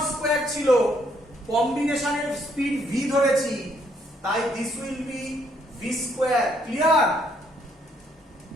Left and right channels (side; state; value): both; normal; correlation 0.70